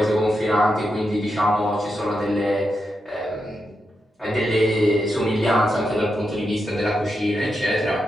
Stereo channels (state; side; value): normal; both; correlation 0.86